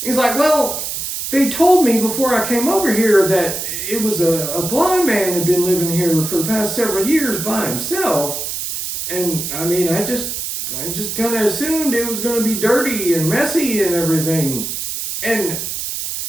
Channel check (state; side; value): noise; right; hiss, 4 dB below the sound